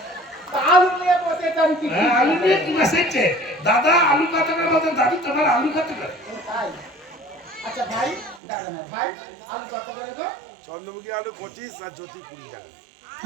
তা আলু নিয়ে বসে এটা আমি কি হ্যাঁ, আলু নিয়ে কি বসেছে? দাদা আলু কত করে বলতেন, দাদু তোমার আলু কত করে? ও তাই? আচ্ছা ভাই, দাদা না ভাই, আলু কত করে তো? চন্দ্রমুখী আলু 25 আর জ্যোতি 20 টাকা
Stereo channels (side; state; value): left; drops out; at 8.4 s